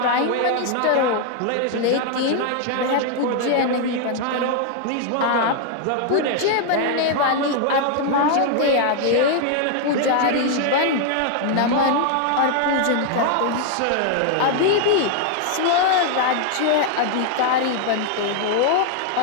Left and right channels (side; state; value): both; different; correlation 0.00